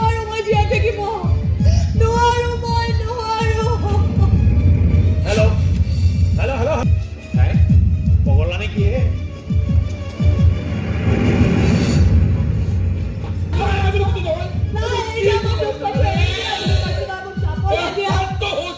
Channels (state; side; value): identical; both; correlation 1.00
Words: মই জীয়াই থাকিব নোৱাৰো মই নোৱাৰো হেল্ল' পগলা নেকি হে